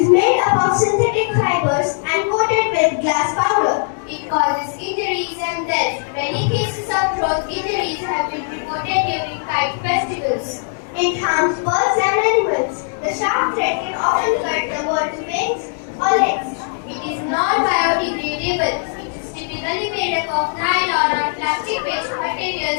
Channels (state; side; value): silent; right; 66 dB below the other